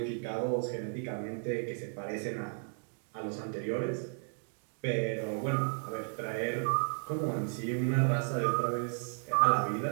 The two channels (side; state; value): left; silent; 55 dB below the other